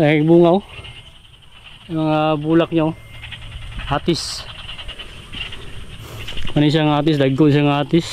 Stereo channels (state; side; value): identical; both; correlation 1.00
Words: bunga oh. Yung mga bulak niya oh. Atis. Ano siyang atis, dagko siyang